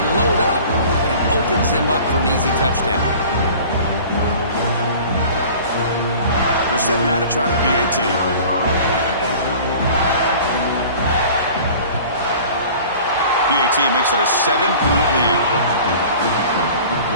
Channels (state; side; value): inverted; both; correlation -0.44